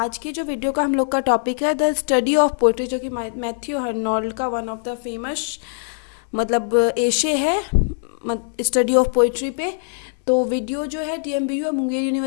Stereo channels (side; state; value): right; silent; 65 dB below the other